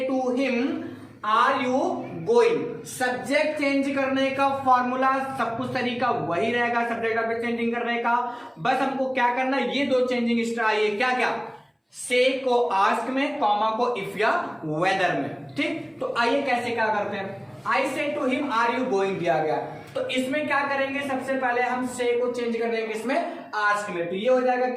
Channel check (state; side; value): identical; both; correlation 1.00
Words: to him are you going. Subject change करने का फॉर्मूला सब कुछ तरीका वही रहेगा, सब्जेक्ट ऑब्जेक्ट चेंजिंग करने का। बस हमको क्या करना है, ये 2 चेंजिंग एक्स्ट्रा आई है। क्या क्या? से को आस्क में, कॉमा को इफ या वेदर में। ठीक, तो आइए कैसे क्या करते हैं। I said to him are you going दिया गया, तो इसमें क्या करेंगे, सबसे पहले हम से को चेंज कर देंगे इसमें आस्क में। तो ये हो जाएगा